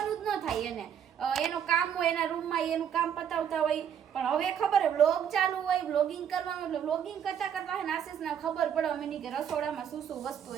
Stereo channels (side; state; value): left; quieter; 8.6 dB